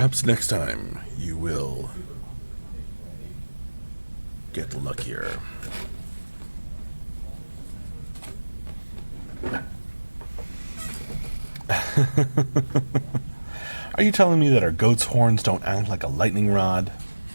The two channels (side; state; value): both; inverted; correlation -1.00